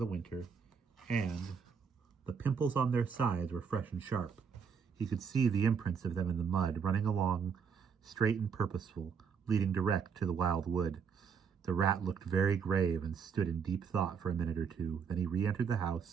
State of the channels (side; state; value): left; quieter; 6.6 dB